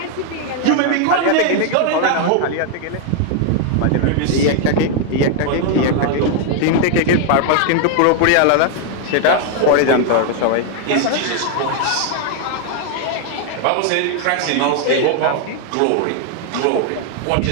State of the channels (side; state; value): both; different; correlation 0.00